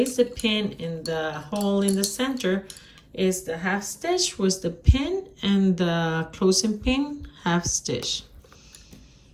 the pin in the hole in the center, is the half stitch with the pin and the closing pin half stitch.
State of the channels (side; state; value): both; identical; correlation 1.00